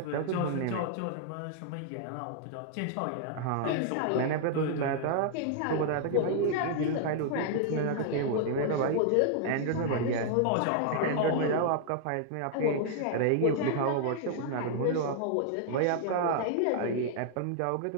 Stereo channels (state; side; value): different; both; correlation -0.01